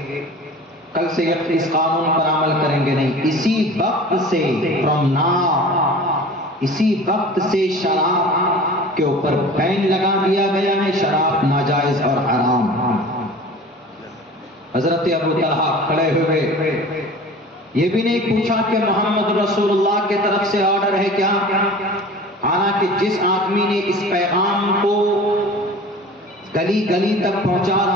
کل سے اس قانون پر عمل کریں گے نہیں، اسی وقت سے فرام ناؤ، اسی وقت سے شراب کے اوپر بین لگا دیا گیا ہے، شراب ناجائز اور حرام۔ حضرت ابو طلحہ کھڑے ہوئے، یہ بھی نہیں پوچھا کہ محمد رسول اللہ کی طرف سے آرڈر ہے کیا، حالانکہ جس آدمی نے اس پیغام کو گلی گلی تک پہنچا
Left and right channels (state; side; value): normal; both; correlation 0.40